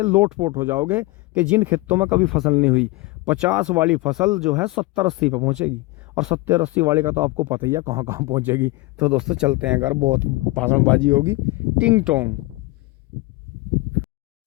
लोटपोट हो जाओगे कि जिन खेतों में कभी फसल नहीं हुई, 50 वाली फसल जो है 70-80 पे पहुंचेगी, और 70-80 वाली का तो आपको पता ही है कहाँ कहाँ पहुंचेगी। तो दोस्तों चलते हैं घर, बहुत भाषणबाजी होगी, टिंग टोंग।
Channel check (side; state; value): right; quieter; 21.5 dB